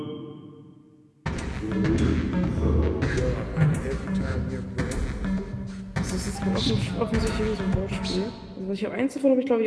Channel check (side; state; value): both; identical; correlation 1.00